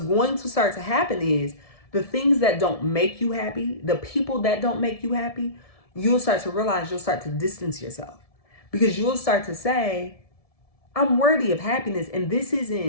going to start to happen is the things that don't make you happy, the people that don't make you happy, you'll start to realize, you'll start to distance yourself, because you'll start to say, I'm worthy of happiness, and this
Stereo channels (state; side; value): late; right; 1.7 ms